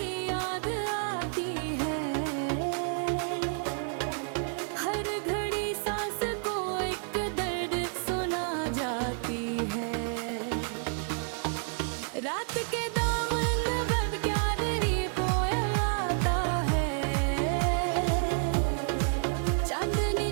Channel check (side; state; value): left; silent; 56 dB below the other